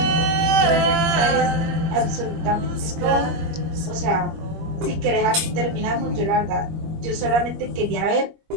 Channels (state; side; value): late; left; 25 ms